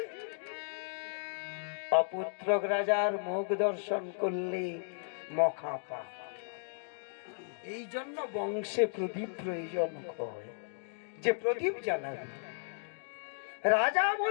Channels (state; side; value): silent; right; digital silence